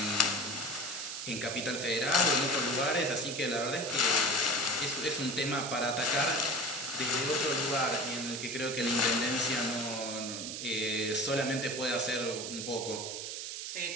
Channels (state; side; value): noise; right; hiss, 6 dB below the sound